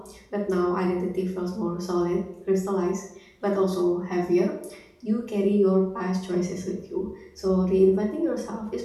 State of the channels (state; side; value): identical; both; correlation 1.00